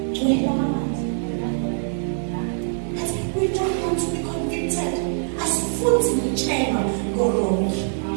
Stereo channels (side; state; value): left; silent; 59 dB below the other